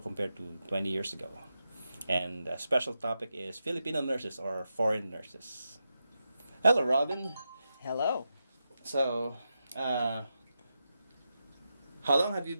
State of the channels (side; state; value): both; inverted; correlation -0.88